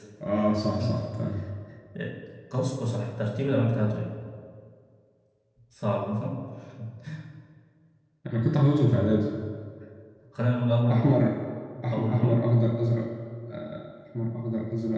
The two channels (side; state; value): both; identical; correlation 1.00